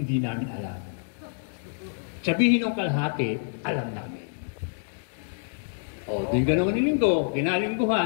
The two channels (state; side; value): silent; right; digital silence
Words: namin alam. Sabihin ng kalahati, alam namin. O, din ganoon ng linggo,